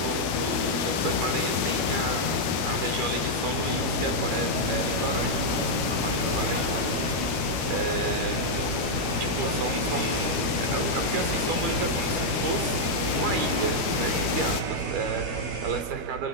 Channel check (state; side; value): late; left; 12 ms